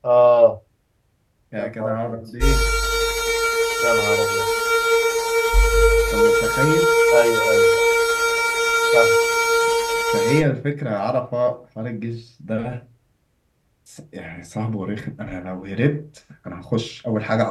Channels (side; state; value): both; identical; correlation 1.00